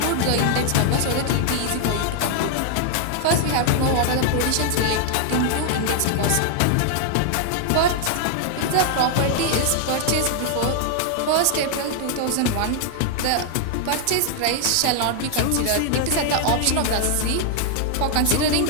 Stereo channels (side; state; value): both; different; correlation 0.00